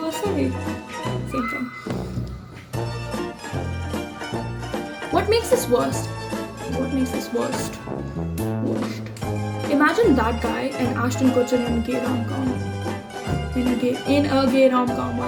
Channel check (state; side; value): identical; both; correlation 1.00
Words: Same thing. What makes this worst? Worst. Imagine that guy and Ashton Kutcher in a gay rom-com. In a gay rom-com. Why